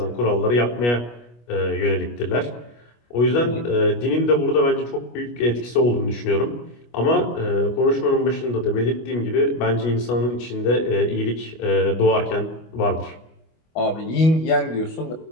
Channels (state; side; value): late; right; 25 ms